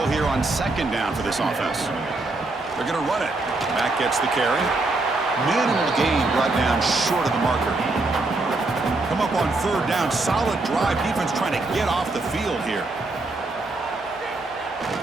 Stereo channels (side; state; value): left; quieter; 3.2 dB